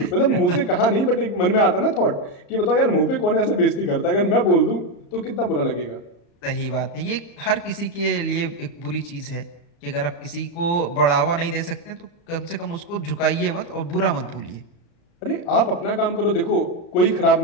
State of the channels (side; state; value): right; late; 35 ms